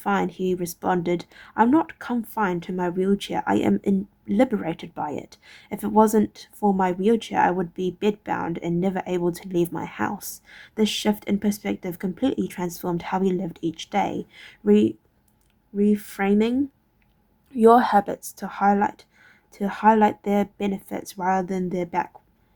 he responded, "I'm not confined to my wheelchair. I am liberated by it. If it wasn't for my wheelchair, I would be bedbound and never able to leave my house." This shift in perspective completely transformed how he lived each day. Reframing your habits to highlight their benefits rather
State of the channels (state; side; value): identical; both; correlation 1.00